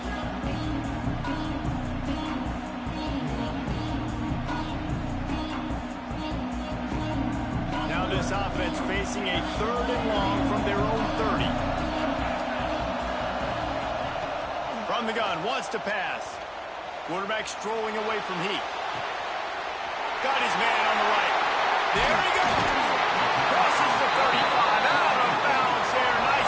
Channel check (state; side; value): identical; both; correlation 1.00